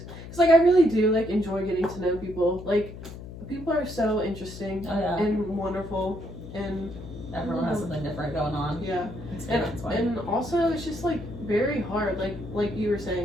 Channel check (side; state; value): left; noise; hum, 13 dB below the sound